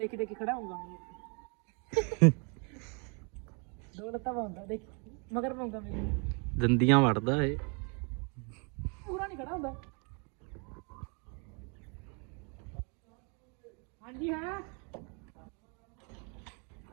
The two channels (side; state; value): left; quieter; 35.6 dB